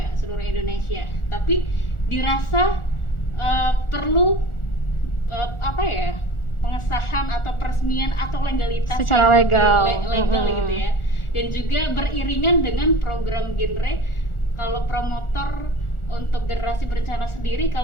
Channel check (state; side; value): late; right; 1.4 ms